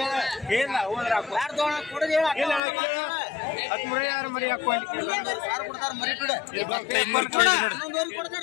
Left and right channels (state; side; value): drops out; right; at 2.6 s